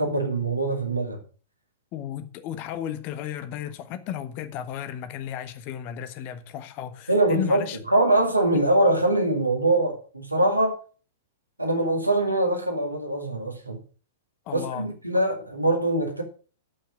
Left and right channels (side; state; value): both; inverted; correlation -0.58